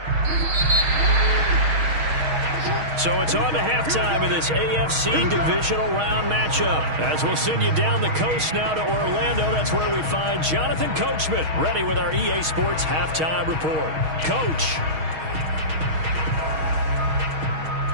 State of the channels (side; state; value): left; late; 6.4 ms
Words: So it's on to halftime in this AFC Divisional Round matchup. As we'll send you down the coast now to Orlando. That's where we find Jonathan Coachman ready with our EA Sports Halftime Report. Coach.